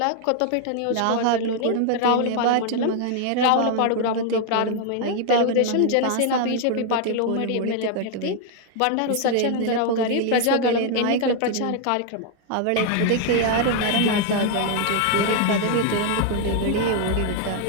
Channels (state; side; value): different; both; correlation 0.00